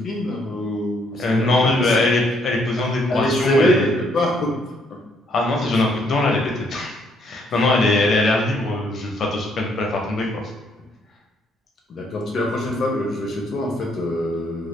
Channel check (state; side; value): normal; both; correlation 0.70